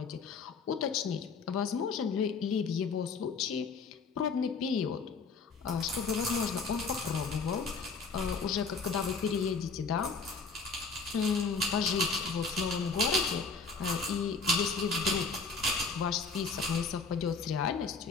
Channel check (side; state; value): right; quieter; 4.7 dB